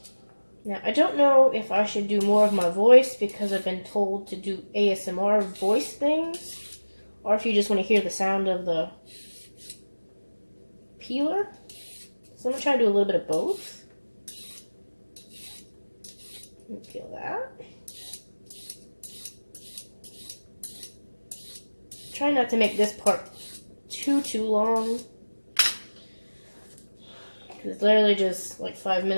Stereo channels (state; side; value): inverted; both; correlation -1.00